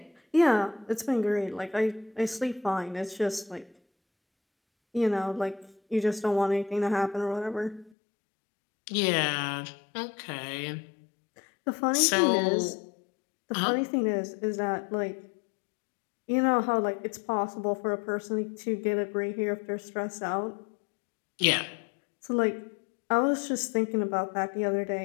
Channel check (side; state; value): right; drops out; at 7.9 s